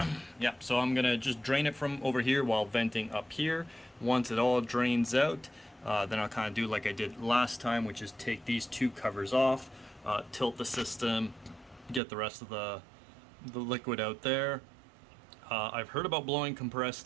Yeah, so I'm gonna just drain it from over here while venting up here. Once it all drains out, then I'll kind of do like I did last time, which is take these two covers off, tilt the system, get the rest of the liquid out there. I've heard about blowing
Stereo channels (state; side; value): drops out; left; at 12.0 s